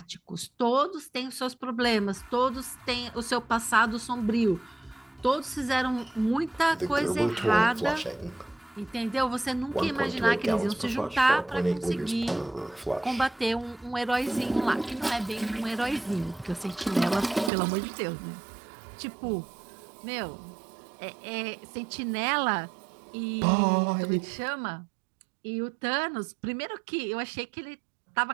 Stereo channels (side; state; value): left; drops out; at 17.5 s